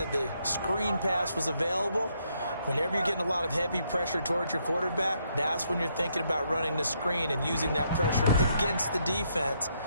the screen pass was available. Whenever you're getting a lot of heavy pressure towards your quarterback, that's when you're thinking about running the screen and using that pressure against the defense.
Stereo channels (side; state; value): both; inverted; correlation -0.74